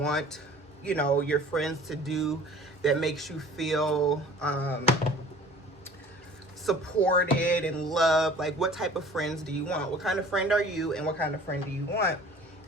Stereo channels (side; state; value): both; normal; correlation 0.47